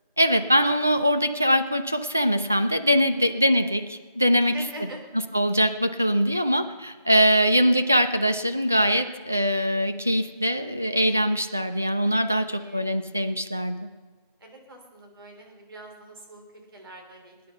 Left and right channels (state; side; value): inverted; both; correlation -0.83